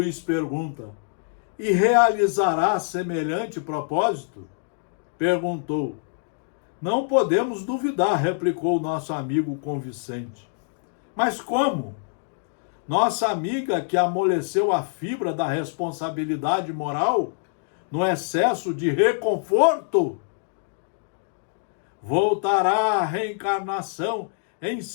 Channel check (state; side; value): silent; right; digital silence